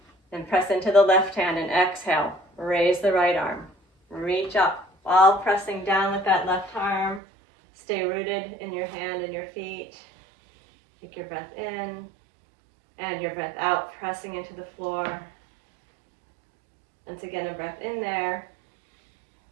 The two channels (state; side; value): drops out; left; at 7.2 s